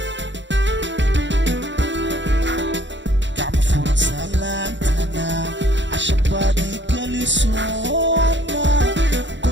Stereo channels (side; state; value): left; late; 0.53 ms